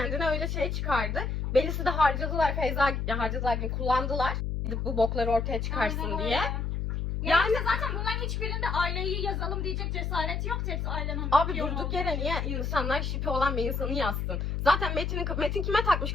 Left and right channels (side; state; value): left; noise; hum, 2 dB below the sound